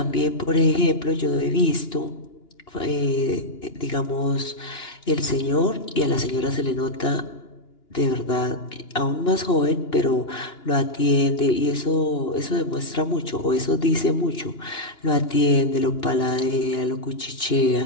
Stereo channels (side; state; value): right; late; 2.9 ms